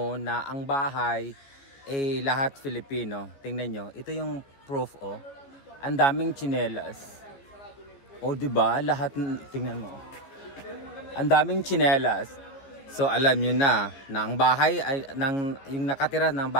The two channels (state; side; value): late; right; 15 ms